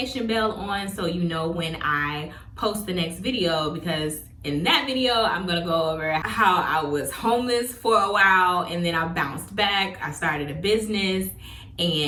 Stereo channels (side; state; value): both; identical; correlation 1.00